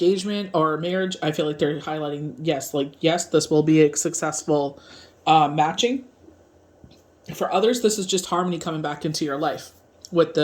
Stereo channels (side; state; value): both; identical; correlation 1.00